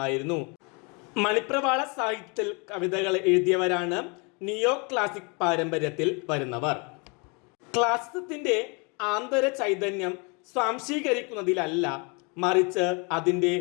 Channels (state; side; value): quieter; right; 32.0 dB